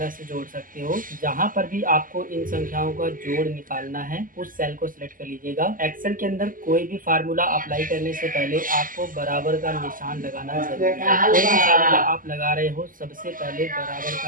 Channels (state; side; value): late; left; 0.40 ms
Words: से जोड़ सकते हो। जहां पर भी आपको इन संख्याओं का जोड़ निकालना है उस सेल को सिलेक्ट कर लीजिएगा। एक्सेल के अंदर कोई भी फार्मूला अप्लाई करने से पहले आपको बराबर का निशान लगाना जरूरी है। कोई भी फार्मूला आप लगा रहे हो, सबसे पहले बराबर